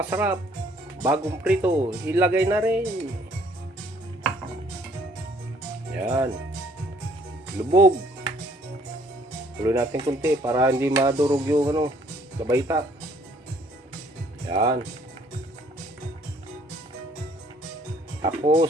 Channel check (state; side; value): normal; both; correlation 0.62